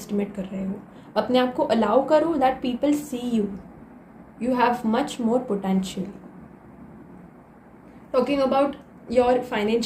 कर रहे हो। अपने आप को अलाउ करो that people see you have much more potential. Talking about your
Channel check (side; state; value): both; identical; correlation 1.00